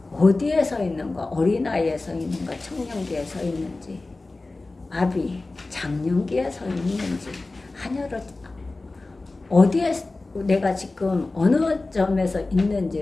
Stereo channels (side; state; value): right; quieter; 3.2 dB